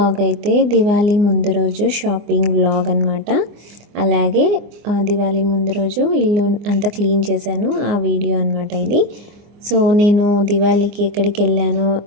అయితే దివాళీ ముందు రోజు షాపింగ్ వ్లాగ్ అనమాట. అలాగే దివాళీ ముందు రోజు ఇల్లు అంతా క్లీన్ చేశాను, ఆ వీడియో అనమాట ఇది. సో నేను దివాళీకి ఎక్కడికి వెళ్ళానో,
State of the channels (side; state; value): left; late; 24 ms